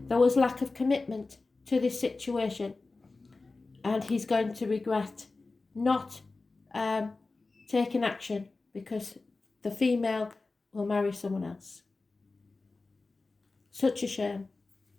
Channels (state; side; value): quieter; right; 3.6 dB